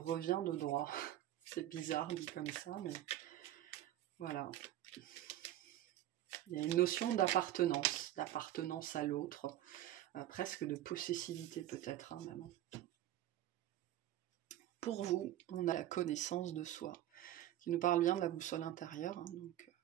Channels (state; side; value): quieter; left; 13.2 dB